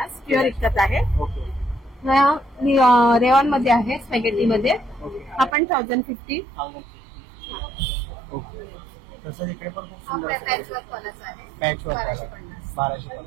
प्युअर इक्कत आहे. ओके. रेऑन मध्ये आहे. स्पॅगेटी मध्ये. हा पण 1050. ओके. तसंच इकडे पण खूप हा सुंदर पॅचवर्क वालाच आहे. Patch work 1250.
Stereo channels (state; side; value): drops out; left; at 5.6 s